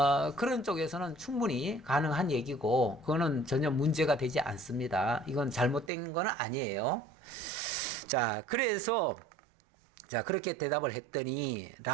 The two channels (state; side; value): drops out; left; at 5.9 s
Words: 그런 쪽에서는 충분히 가능한 얘기고 그거는 전혀 문제가 되지 않습니다. 이건 잘못된 건 아니에요. 자, 그래서 자, 그렇게 대답을 했더니